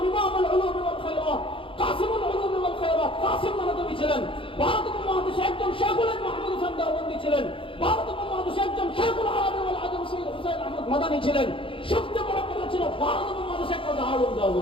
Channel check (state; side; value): late; right; 0.25 ms